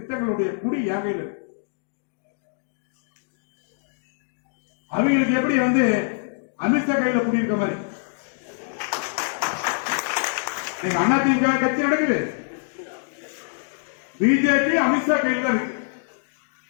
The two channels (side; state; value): right; silent; digital silence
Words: குடி யாகையில் இருக்கு. அவங்களுக்கு எப்படி வந்து அமித்ஷா கையில குடியிருக்க மாதிரி அதிமுக கட்சி நடக்குது, பிஜேபி அமித்ஷா கையில் தான் இருக்கு.